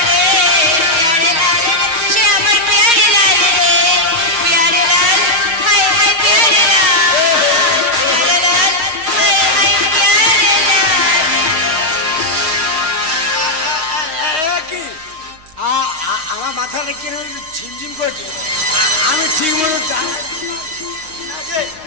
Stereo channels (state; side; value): late; left; 6.4 ms